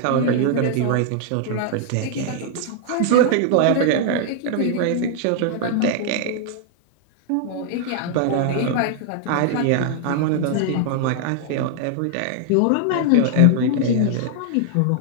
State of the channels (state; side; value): different; both; correlation 0.00